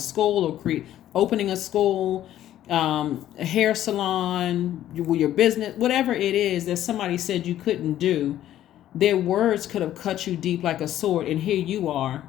or opening a school, a hair salon, your business, whatever it is that somebody said you couldn't do. Their words could have cut you deep like a sword, and here you are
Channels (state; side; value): quieter; right; 12.3 dB